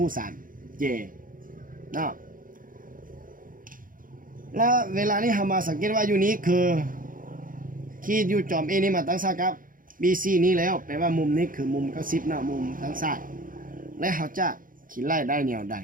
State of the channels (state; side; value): late; left; 0.40 ms